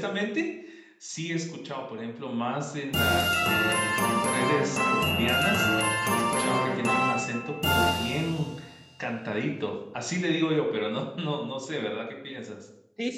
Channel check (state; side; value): identical; both; correlation 1.00